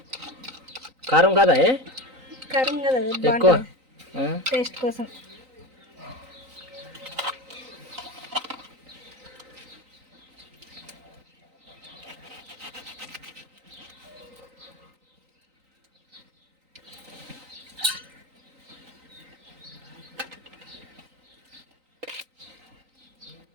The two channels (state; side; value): late; left; 3.9 ms